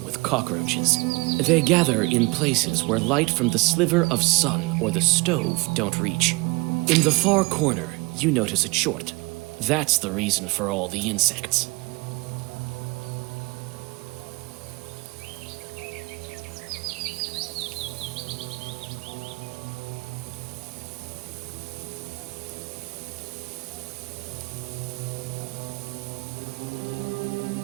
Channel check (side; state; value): left; quieter; 25.7 dB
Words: with cockroaches. They gather in places where light from the sliver of sun or the stove don't reach. In the far corner, you notice a chort. That's the reason for all the insects.